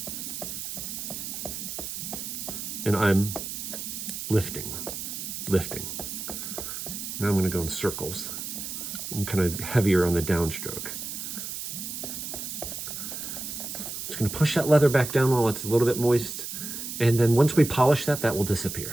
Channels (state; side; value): noise; right; hiss, 6 dB below the sound